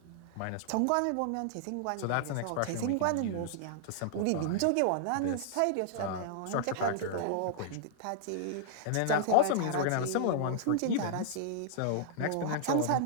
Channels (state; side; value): different; both; correlation -0.01